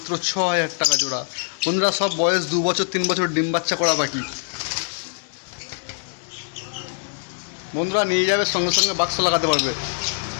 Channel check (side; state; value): right; silent; digital silence